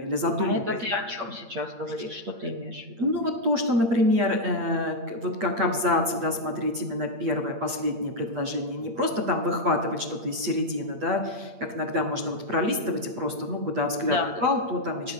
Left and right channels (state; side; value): late; left; 8.7 ms